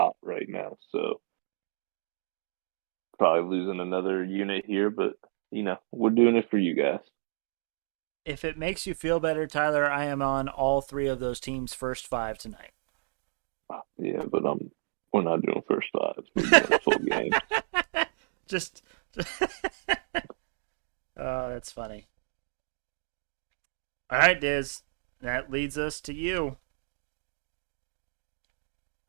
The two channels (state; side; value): silent; left; digital silence